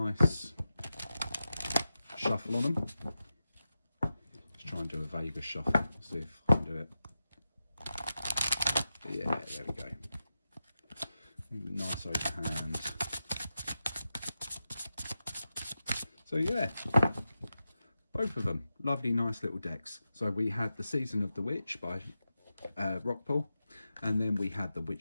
shuffle on them. Let's try and do a Vegas shuffle, see if I can do it. Yeah, there we go. Nice overhand. So yeah, both of them, lovely, nice little decks. So we had the Season of the Witch by Rockpool, and then we had the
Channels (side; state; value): both; inverted; correlation -0.91